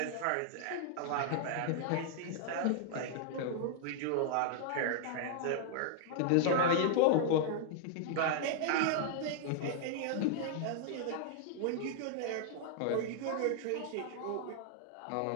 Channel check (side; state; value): both; different; correlation 0.00